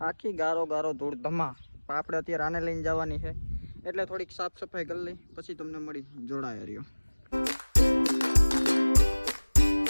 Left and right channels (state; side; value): inverted; both; correlation -1.00